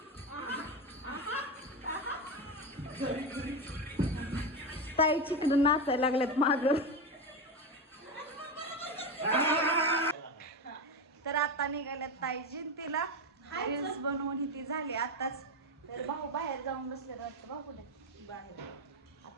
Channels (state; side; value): normal; both; correlation 0.15